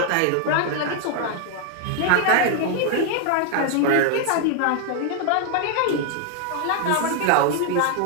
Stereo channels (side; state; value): both; different; correlation 0.00